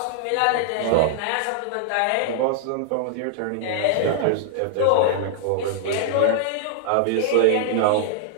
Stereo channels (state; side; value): different; both; correlation -0.01